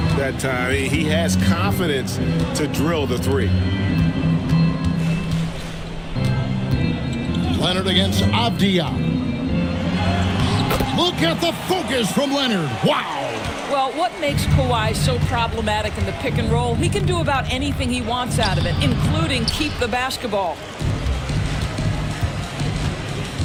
that time, he has confidence to drill the three. Leonard against Avdia. Look at the focus from Leonard. Wow. Well, what makes Kawhi so problematic in the pick and roll? He can do about anything he wants out of it, including keep the basketball.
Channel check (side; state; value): both; identical; correlation 1.00